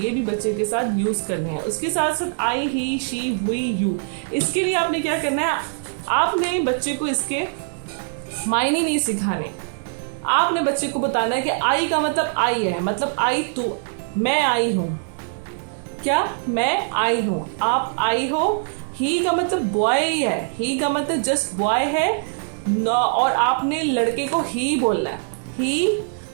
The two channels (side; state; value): left; silent; digital silence